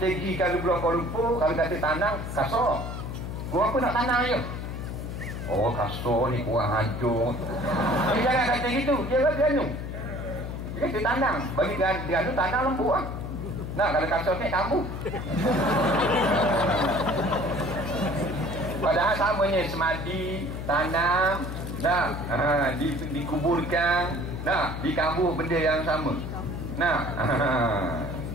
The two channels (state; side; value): noise; left; hum, 6 dB below the sound